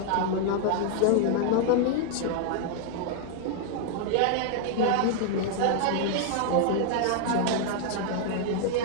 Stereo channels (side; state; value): both; different; correlation 0.00